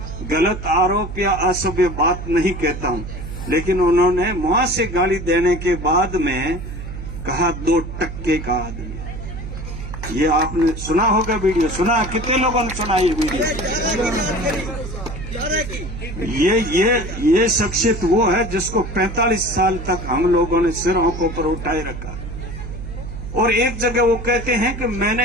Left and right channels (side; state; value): right; noise; hum, 9 dB below the sound